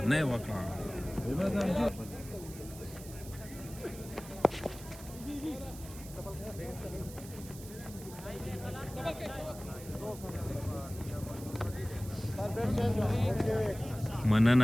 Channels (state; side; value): noise; right; hiss, 16 dB below the sound